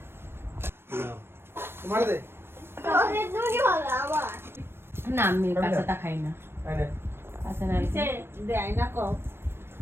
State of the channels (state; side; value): late; left; 0.12 ms